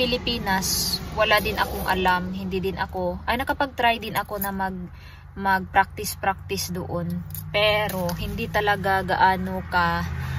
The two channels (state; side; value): identical; both; correlation 1.00